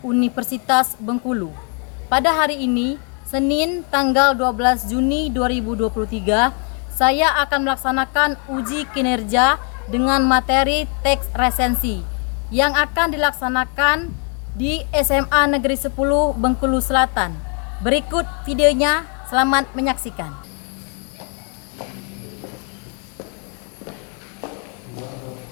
Universitas Bengkulu. Pada hari ini, Senin tanggal 12 Juni 2023, saya akan melaksanakan uji kinerja dengan materi teks resensi yang akan dilaksanakan di SMA Negeri 10 Bengkulu Selatan. Berikut videonya, selamat menyaksikan.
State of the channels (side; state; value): right; quieter; 39.3 dB